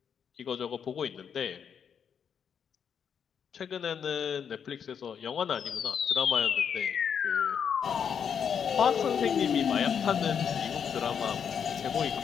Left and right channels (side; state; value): right; quieter; 7.5 dB